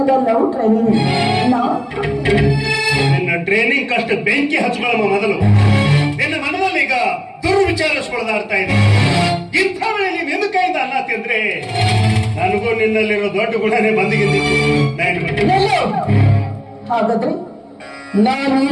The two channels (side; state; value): both; identical; correlation 1.00